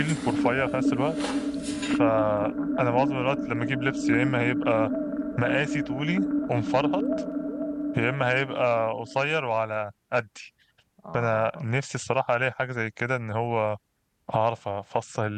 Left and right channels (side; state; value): both; identical; correlation 1.00